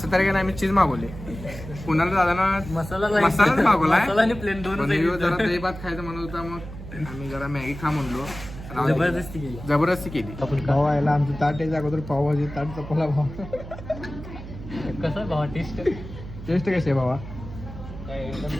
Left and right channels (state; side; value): noise; right; hum, 12 dB below the sound